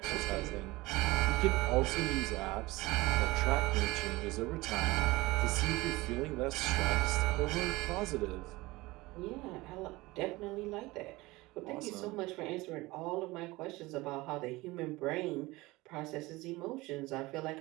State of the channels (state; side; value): quieter; left; 20.9 dB